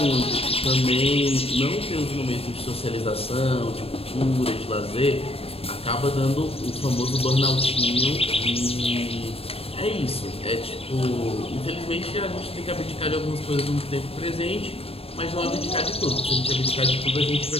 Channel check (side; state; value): right; late; 0.28 ms